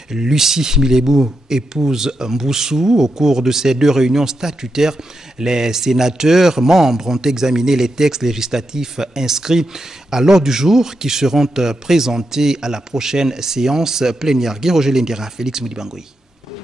Lucie Milebou, épouse Mboussou. Au cours de ces deux réunions statutaires, les sénateurs membres ont examiné les textes législatifs inscrits à l'ordre du jour qui seront présentés à la prochaine séance plénière. Guy Roger Lendira, Félix Moudibangoui.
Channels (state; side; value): normal; both; correlation 0.85